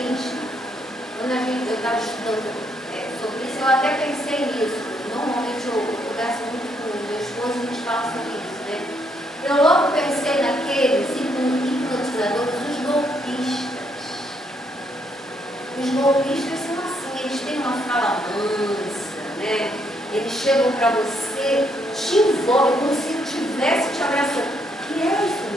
quando eu estava estudando sobre isso, eu até pensei nisso. Normalmente eu converso muito com o meu esposo e a gente fala sobre isso, né? Eu logo pensei naqueles hipnotizadores, os golpistas. Os golpistas são assim, eles têm uma fala mansa, né? Eles chegam para você, te envolvem como se estivesse te abraçando. E é isso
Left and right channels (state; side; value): normal; both; correlation 0.73